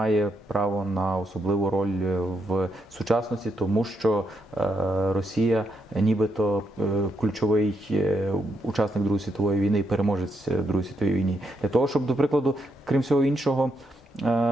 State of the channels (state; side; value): normal; both; correlation 0.79